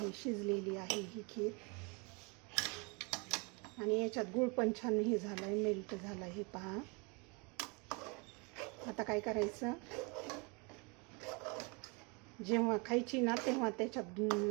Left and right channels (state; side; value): quieter; left; 30.8 dB